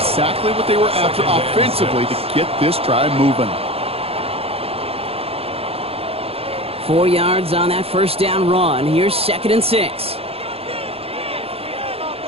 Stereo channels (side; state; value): left; late; 0.28 ms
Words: what they were after offensively to get this drive moving. 4 yards on that 1st down run. Here's 2nd and 6.